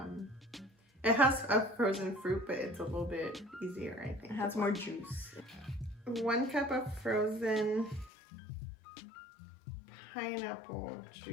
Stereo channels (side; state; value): right; drops out; at 8.1 s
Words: It has a frozen fruit, but it's a little bit easier, I think. It has more juice. 1 cup of frozen pineapple